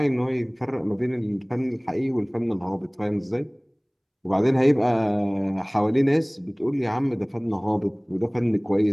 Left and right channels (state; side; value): identical; both; correlation 1.00